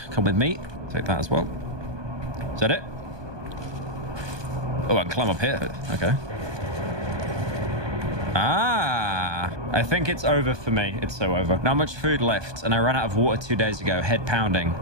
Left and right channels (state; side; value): late; left; 1.2 ms